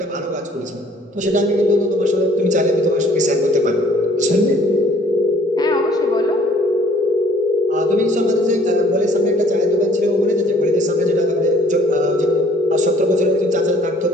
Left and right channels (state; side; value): normal; both; correlation 0.58